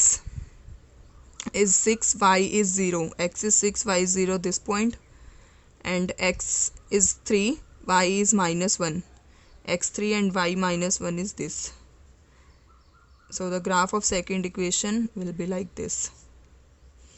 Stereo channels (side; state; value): both; identical; correlation 1.00